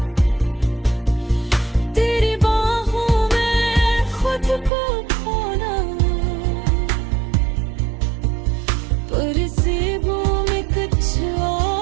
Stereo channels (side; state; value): left; drops out; at 4.7 s